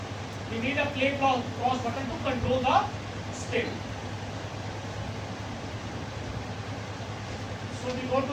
We need a play pause button to control the spin. So we go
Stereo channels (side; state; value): both; identical; correlation 1.00